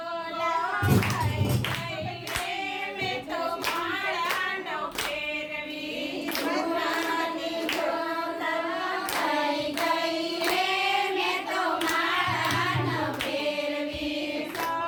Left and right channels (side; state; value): both; identical; correlation 1.00